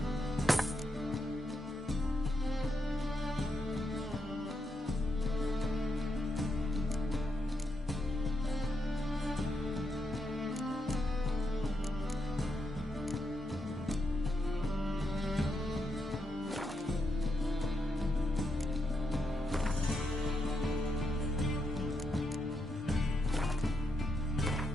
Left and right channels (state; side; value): normal; both; correlation 0.82